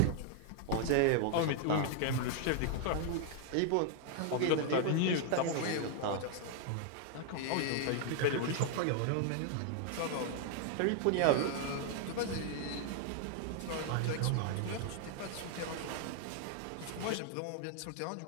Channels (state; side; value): different; both; correlation 0.00